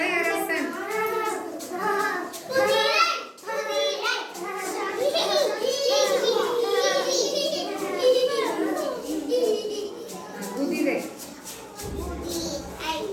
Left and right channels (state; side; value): identical; both; correlation 1.00